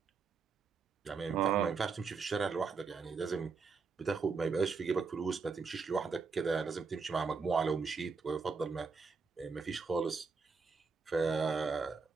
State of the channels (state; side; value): quieter; left; 5.0 dB